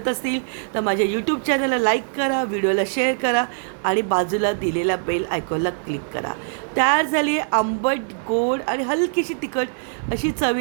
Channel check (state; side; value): silent; left; 59 dB below the other